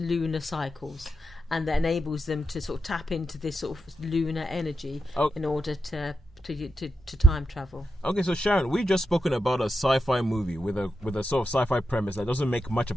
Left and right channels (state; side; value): normal; both; correlation 0.88